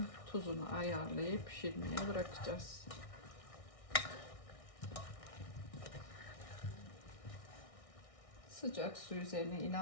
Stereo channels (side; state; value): right; late; 1.6 ms